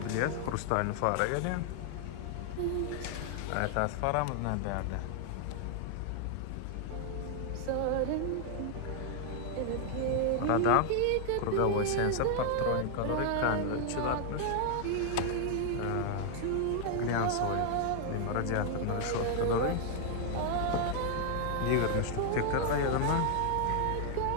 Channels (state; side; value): different; both; correlation 0.00